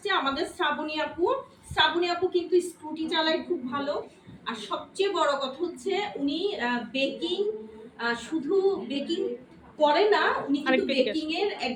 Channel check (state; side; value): identical; both; correlation 1.00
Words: আমাদের শ্রাবণী আপু। শ্রাবণী আপু কিন্তু স্কুটি চালায় খুব ভালো, আর সবচেয়ে বড় কথা হচ্ছে উনি বেকিং, শুধু বেকিং করে না, উনি কিন্তু বেকিং এর